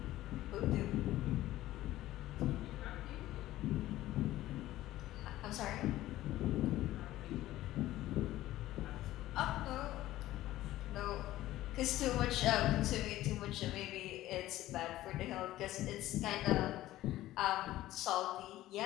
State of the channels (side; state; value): right; quieter; 15.2 dB